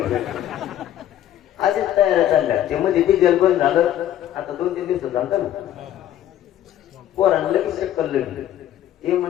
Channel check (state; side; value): quieter; right; 11.8 dB